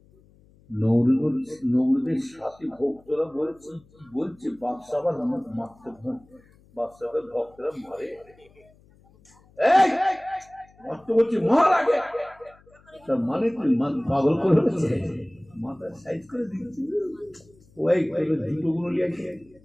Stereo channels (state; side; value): noise; left; hum, 29 dB below the sound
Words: নৌরুদের সাথে ভক্তরা বলছে বাদশাহ আবার মারতে বাদশাহের ভক্তরা মারে মারতে বলছে মার আগে, তার মানে তুই পাগল করে মাথা সাইজ করে দিচ্ছি। ওই জুতো গুলো নিয়ে